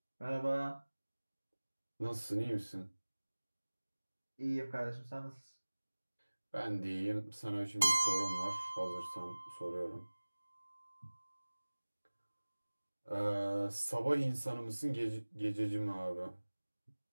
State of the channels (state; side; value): inverted; both; correlation -1.00